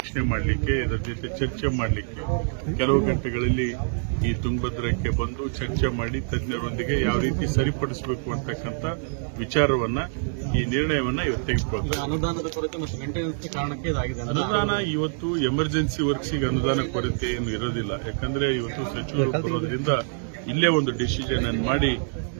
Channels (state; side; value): silent; left; digital silence